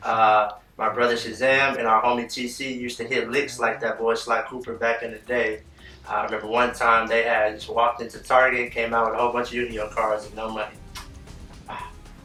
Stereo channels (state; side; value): identical; both; correlation 1.00